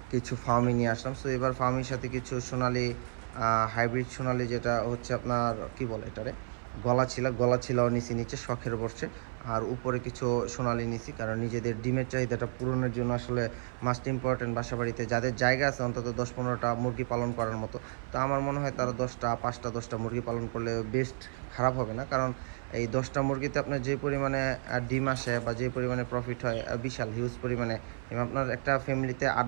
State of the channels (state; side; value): silent; left; 57 dB below the other